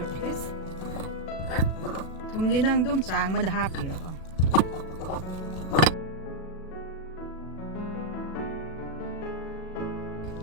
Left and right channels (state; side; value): late; right; 37 ms